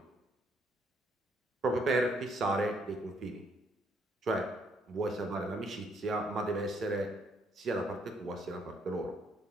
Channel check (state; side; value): normal; both; correlation 0.69